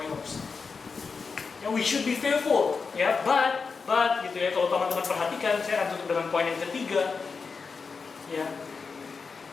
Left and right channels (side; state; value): right; quieter; 5.0 dB